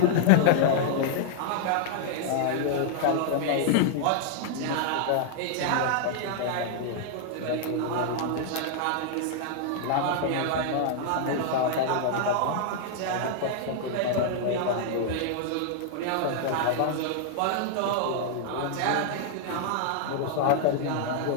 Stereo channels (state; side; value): different; both; correlation -0.01